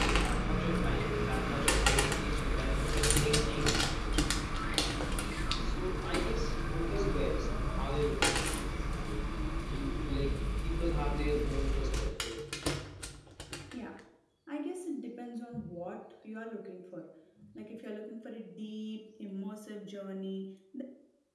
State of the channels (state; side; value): identical; both; correlation 1.00